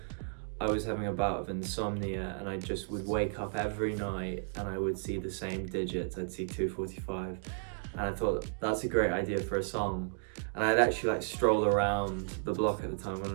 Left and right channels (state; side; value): silent; left; digital silence